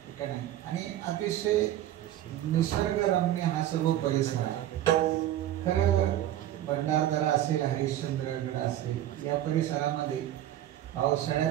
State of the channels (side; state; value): left; quieter; 12.7 dB